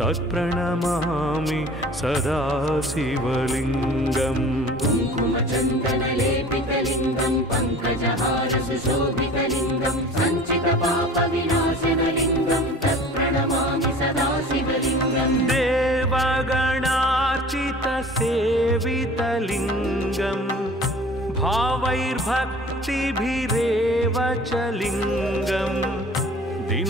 सदा शिवलिङ्गम् कुङ्कुमचन्दनलेपितलिङ्गं पङ्कजहारसुशोभितलिङ्गं सञ्चितपापविनाशनलिङ्गं तत्प्रणमामि सदा शिवलिङ्गम् देवगणार्चितसेवितलिङ्गं भावैर्भक्तिभिरेव च लिङ्गम्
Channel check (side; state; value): both; normal; correlation 0.44